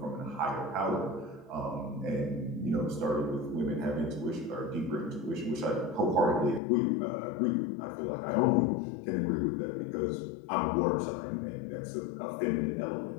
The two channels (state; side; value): drops out; right; at 6.6 s